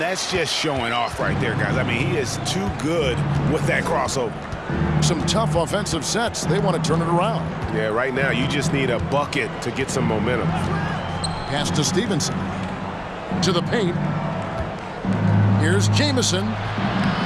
just showing off right there, guys. I mean, he is too good with that crossover. Some tough offensive sets. They want to turn it around. Yeah, right now you just need a bucket to get some momentum. Pass to Stevenson. To the paint. Here's Jamison.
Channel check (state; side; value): identical; both; correlation 1.00